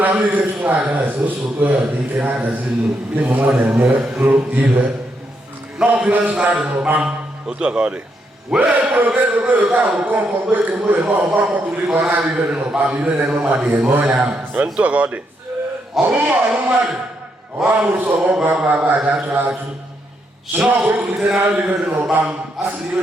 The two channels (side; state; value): both; normal; correlation 0.79